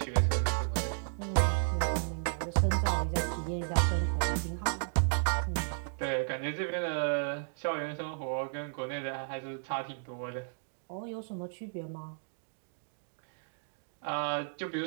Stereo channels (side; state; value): left; silent; digital silence